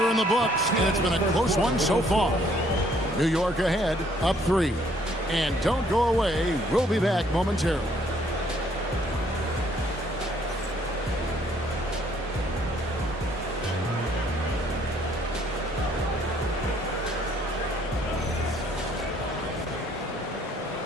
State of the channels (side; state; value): both; normal; correlation 0.64